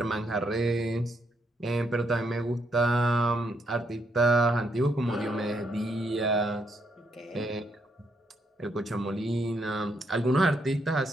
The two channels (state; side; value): normal; both; correlation 0.76